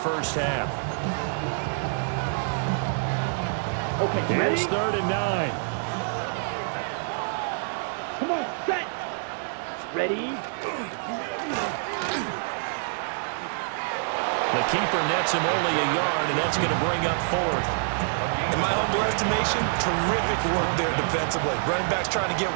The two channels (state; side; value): silent; left; digital silence